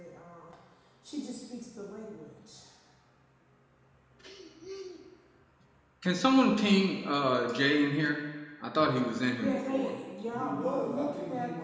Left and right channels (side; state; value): both; identical; correlation 1.00